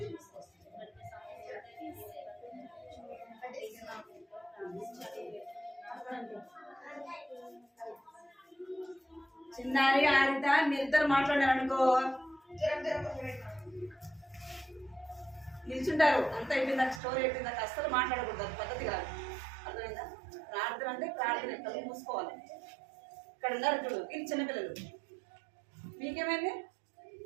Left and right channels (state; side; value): drops out; left; at 17.0 s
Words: చిన్నారి ఆరిత మీరిద్దరు మాట్లాడారనుకో నిల్చుంటారు. అంత అయిపోయిందాక స్టోరీ అయిపోయిందాక అస్సలు మాట్లాడకూడదు. అది పద్ధతి కాదు. అర్థమైందా? ప్రార్థన అంటే ప్రార్థన ఎక్కడ మూసుకోవాలి. ఇక్కడ ఉన్నారు చూడు వీళ్ళు చిన్నపిల్లలు. మీకేమైంది?